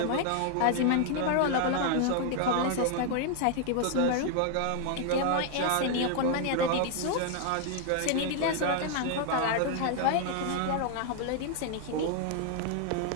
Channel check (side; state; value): both; different; correlation 0.00